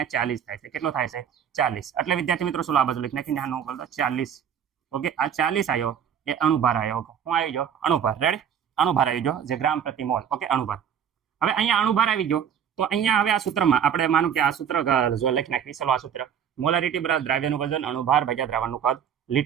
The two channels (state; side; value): quieter; left; 8.4 dB